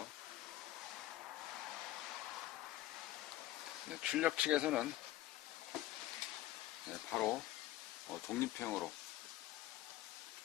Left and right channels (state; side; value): quieter; right; 15.4 dB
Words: 네, 출력 측에서는 바로 독립형으로